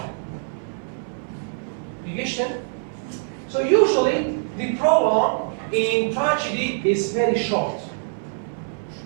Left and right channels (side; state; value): left; silent; 63 dB below the other